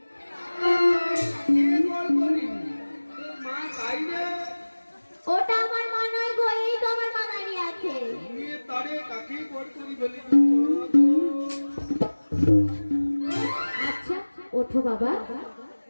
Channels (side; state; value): both; inverted; correlation -1.00